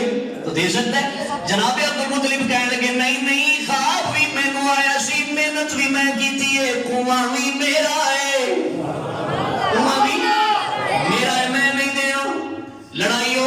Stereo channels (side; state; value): both; identical; correlation 1.00